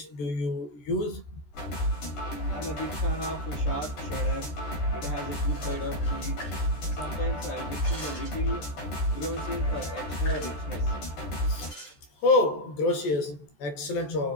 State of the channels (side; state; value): right; late; 14 ms